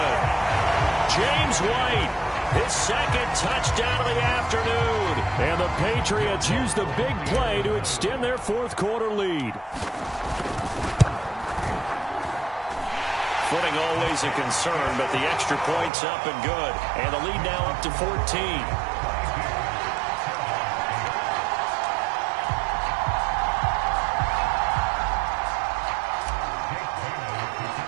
James White, his second touchdown of the afternoon. And the Patriots use the big play to extend their fourth quarter lead. Footing always a concern, but the extra point's up and good. And the lead now up to 14.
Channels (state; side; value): drops out; left; at 15.9 s